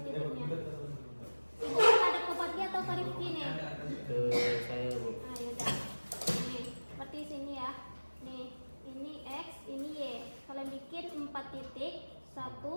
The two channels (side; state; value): both; inverted; correlation -1.00